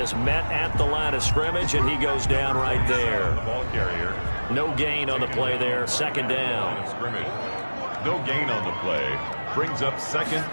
met at the line of scrimmage, and he goes down right there. The ball carrier. No gain on the play there. 2nd down. No gain on the play. Brings up 2nd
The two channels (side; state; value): both; inverted; correlation -1.00